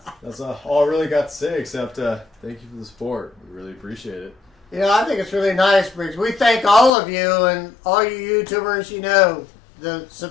that's all I really got to say, except thank you for the support. We really appreciate it. You know, I think it's really nice, Briggs. We thank all of you and all you YouTubers. You know, the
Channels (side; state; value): right; drops out; at 6.9 s